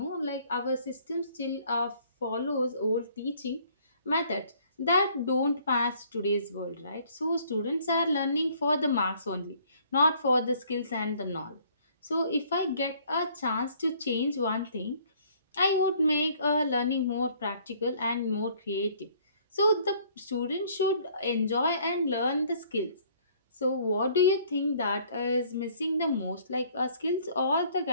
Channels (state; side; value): inverted; both; correlation -0.59